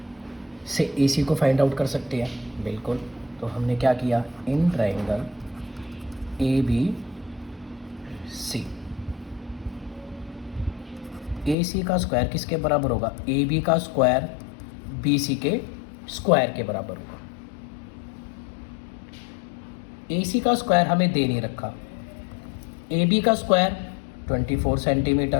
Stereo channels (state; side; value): drops out; right; at 11.6 s